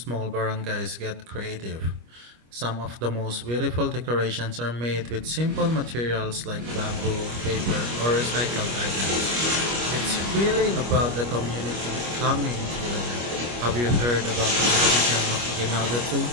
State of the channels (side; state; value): left; late; 25 ms